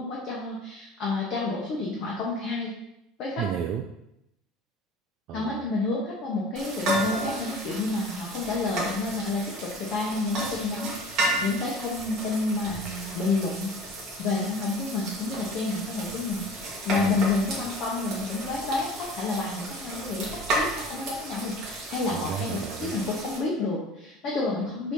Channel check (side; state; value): both; normal; correlation 0.42